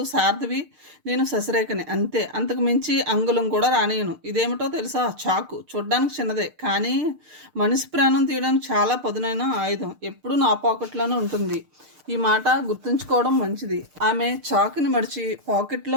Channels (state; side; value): late; left; 6.6 ms